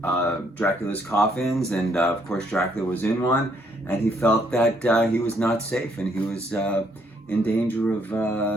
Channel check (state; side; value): normal; both; correlation 0.70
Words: Dracula's coffins, and of course Dracula was in one, and he felt that he was not safe and he was in danger of